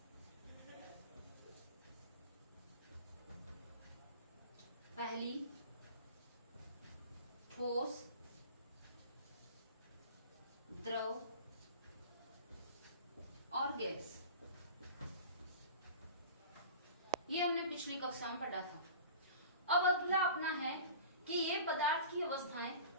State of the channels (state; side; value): inverted; both; correlation -0.38